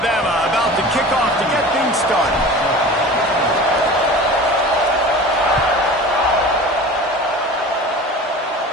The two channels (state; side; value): normal; both; correlation 0.37